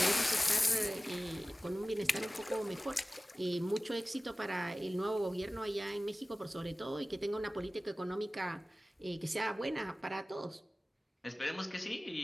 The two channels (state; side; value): normal; both; correlation 0.97